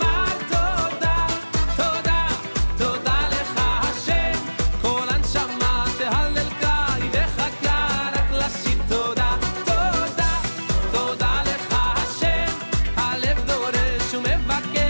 תודה תודה תודה לך השם כל הנשמה תהלל קי וחכה רק לשיר תודה תודה תודה לך השם הלב דורש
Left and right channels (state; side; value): inverted; both; correlation -1.00